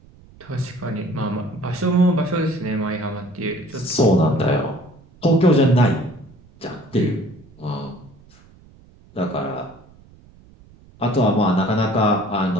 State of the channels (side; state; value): right; noise; rumble, 25 dB below the sound